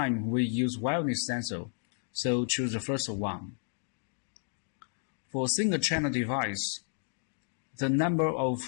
we use wildness sensor, so choose the first one. For a single channel device, the number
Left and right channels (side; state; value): right; silent; digital silence